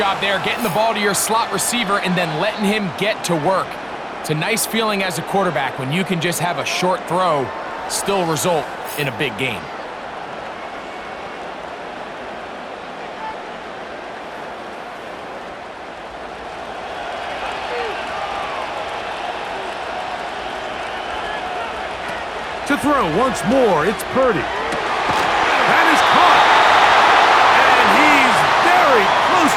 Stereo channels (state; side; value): identical; both; correlation 1.00